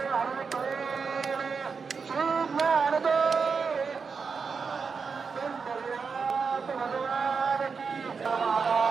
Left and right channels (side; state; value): left; quieter; 5.3 dB